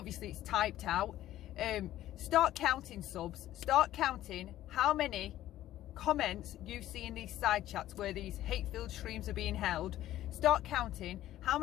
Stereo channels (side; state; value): right; quieter; 13.7 dB